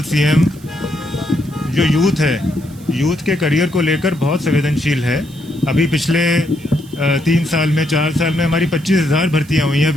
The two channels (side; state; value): right; noise; hiss, 24 dB below the sound